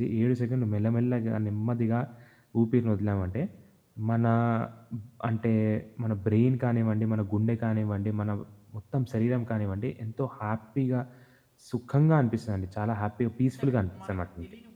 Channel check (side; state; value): both; identical; correlation 1.00